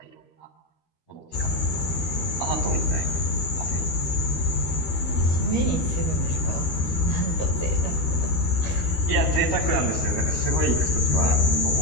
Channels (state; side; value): late; right; 13 ms